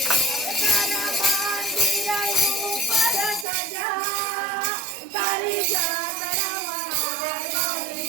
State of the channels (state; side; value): drops out; left; at 3.5 s